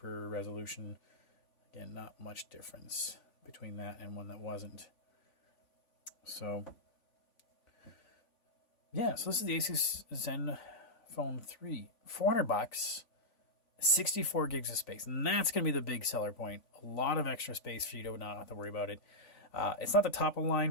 resolution. Again, not much difference between that and one that wasn't. So, yeah, so this is the Asus Zenfone 3. $400, 64 gigs of space. And that's going to be the big seller point. A lot of extra space for you to not have to worry about it. It's not the top of the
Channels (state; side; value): late; right; 3.5 ms